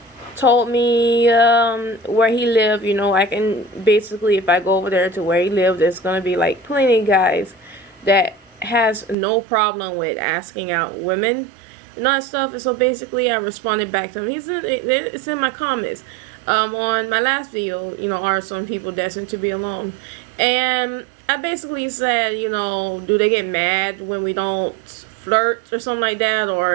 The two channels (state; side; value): drops out; left; at 9.2 s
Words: told me where he lived. You know, I can basically, if I go over there to where he lived, there's gonna be like plenty of guys that has no problem with asking out women and all that stuff. And so basically, I responded back to him. It's in my comments on my last video. You know, are some people destined to be alone? And I basically said, you know, do they get mad when we don't flirt or something like that,